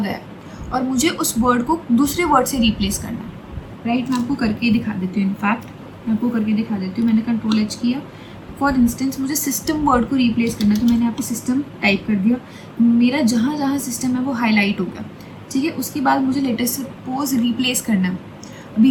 है और मुझे उस वर्ड को दूसरे वर्ड से रिप्लेस करना है, राइट। मैं आपको करके दिखा देती हूँ, इनफैक्ट मैं आपको करके दिखा देती हूँ। मैंने कंट्रोल एच किया, फॉर इंस्टेंस मुझे सिस्टम वर्ड को रिप्लेस करना है तो मैंने यहाँ पे सिस्टम टाइप कर दिया, मेरा जहाँ जहाँ सिस्टम है वो हाईलाइट हो गया। ठीक है, उसके बाद मुझे लेटेस्ट सपोज रिप्लेस करना है। अभी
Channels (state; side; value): identical; both; correlation 1.00